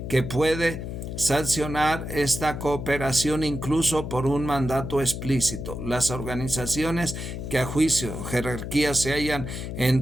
que puede sancionar esta cooperación incluso por un mandato explícito. Las organizaciones que a juicio jerarquía se hallan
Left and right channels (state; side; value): noise; left; hum, 6 dB below the sound